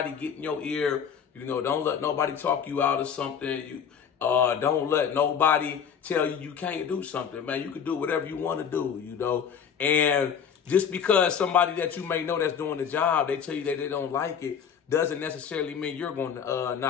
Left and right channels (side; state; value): right; quieter; 7.5 dB